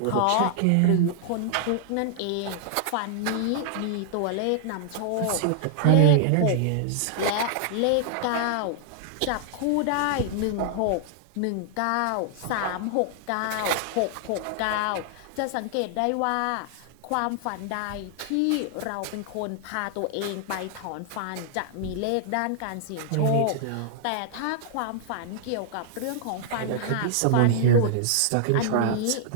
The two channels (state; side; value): different; both; correlation -0.01